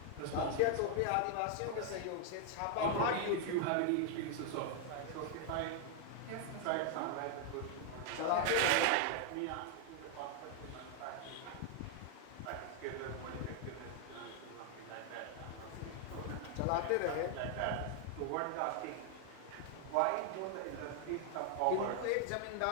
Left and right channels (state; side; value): different; both; correlation 0.00